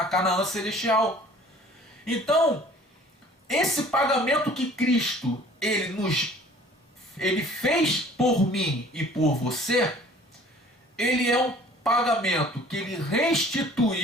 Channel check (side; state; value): both; normal; correlation 0.51